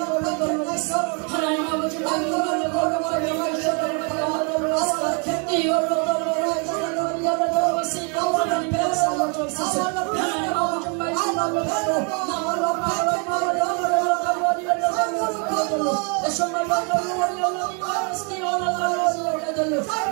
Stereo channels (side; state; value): left; quieter; 36.7 dB